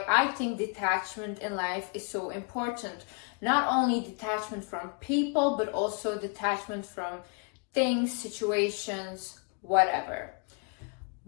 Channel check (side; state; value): right; quieter; 38.1 dB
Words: I think detachment in life is so important. Not only detachment from people, but also detachment from things, situations, whatever.